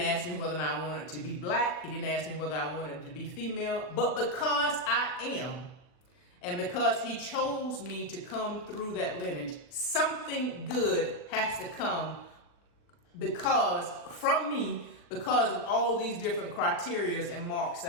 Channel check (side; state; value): right; late; 39 ms